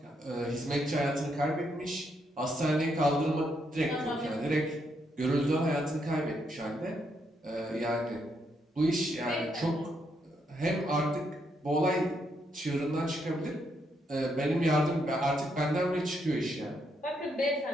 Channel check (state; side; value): normal; both; correlation 0.77